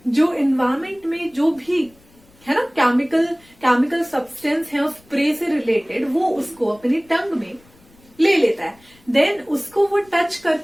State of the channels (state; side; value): noise; left; rumble, 29 dB below the sound